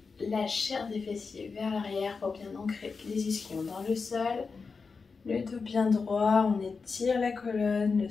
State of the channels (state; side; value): quieter; right; 4.8 dB